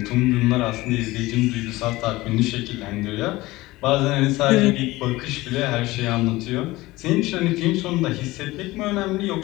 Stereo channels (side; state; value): right; quieter; 19.4 dB